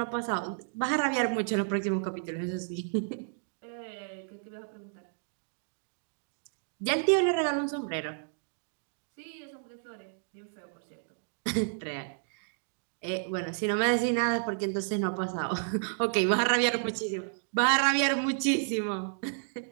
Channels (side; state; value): left; silent; digital silence